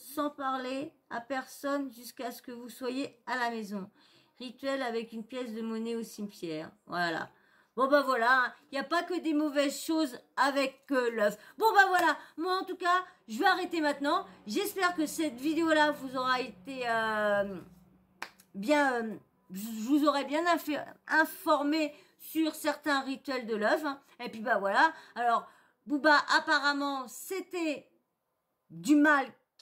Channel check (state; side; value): identical; both; correlation 1.00